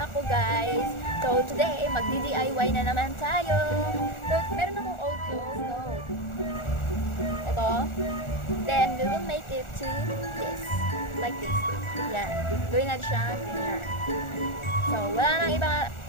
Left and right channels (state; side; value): late; right; 1.4 ms